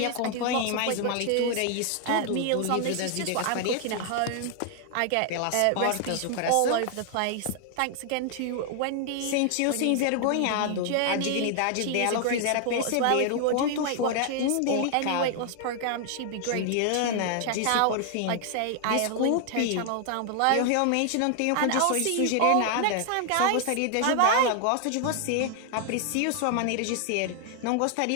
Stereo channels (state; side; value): different; both; correlation 0.00